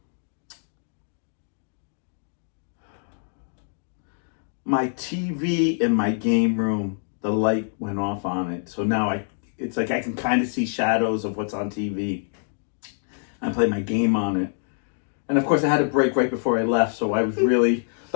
my TV in my game room, the light went off on it, so now it's like I can kind of see shadows of what's on TV. I play my game on it, and of course I had a break right before I left, so I was really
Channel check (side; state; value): right; silent; digital silence